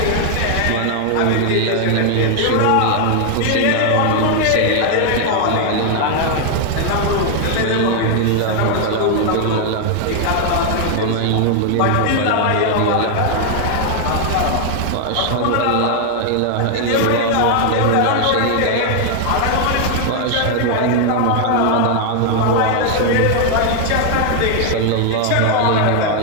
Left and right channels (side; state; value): both; different; correlation 0.00